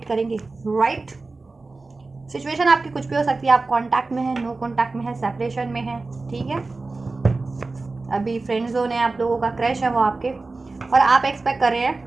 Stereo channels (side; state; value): left; quieter; 3.6 dB